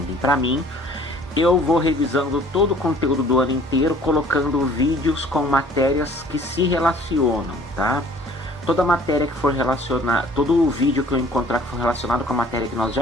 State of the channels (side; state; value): both; normal; correlation 0.53